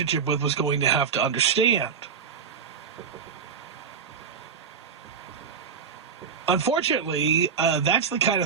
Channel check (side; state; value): left; quieter; 6.4 dB